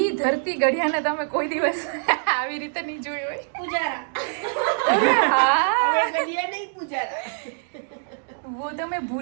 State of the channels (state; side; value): silent; left; digital silence